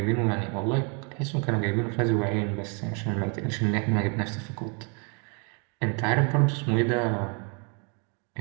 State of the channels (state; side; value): quieter; left; 36.1 dB